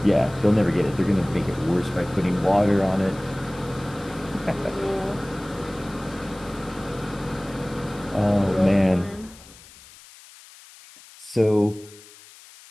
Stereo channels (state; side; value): noise; left; hiss, 21 dB below the sound